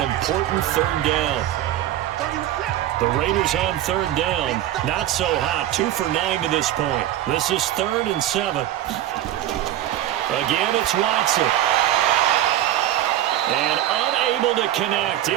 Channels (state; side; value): quieter; left; 12.8 dB